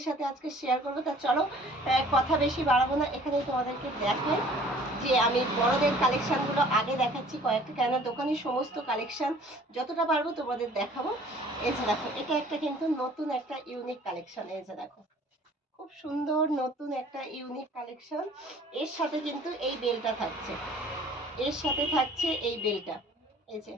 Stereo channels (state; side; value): normal; both; correlation 0.52